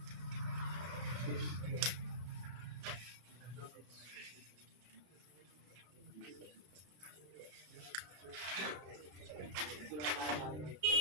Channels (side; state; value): left; late; 33 ms